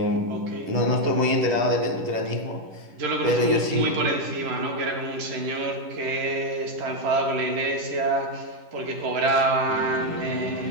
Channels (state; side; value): late; left; 10 ms